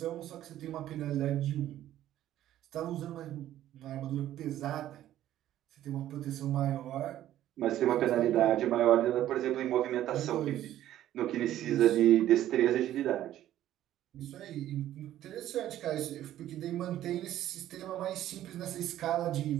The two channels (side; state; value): left; quieter; 12.8 dB